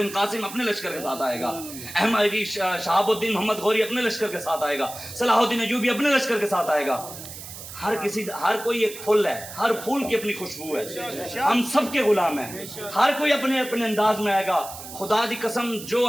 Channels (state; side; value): noise; right; hiss, 12 dB below the sound